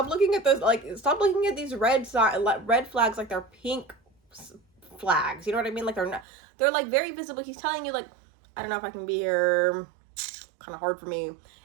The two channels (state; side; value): drops out; left; at 6.2 s